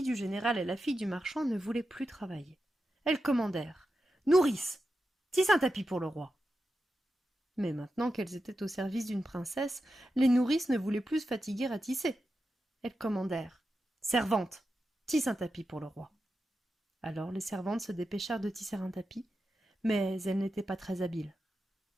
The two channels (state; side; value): normal; both; correlation 0.90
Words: du général et la fille du marchand ne voulaient plus travailler. Elles commandèrent : « Nourrice, tisse un tapis pour le roi. » Mais maintenant qu'elles étaient au service d'une princesse, les nourrices ne voulaient plus se fatiguer à tisser. Elles commandèrent : « Servante, tisse un tapis pour le roi. » Alors les servantes se dépêchèrent de tisser un tapis, mais elles n'étaient pas très habiles.